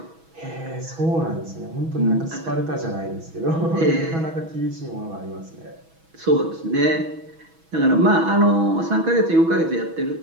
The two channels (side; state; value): left; late; 6.2 ms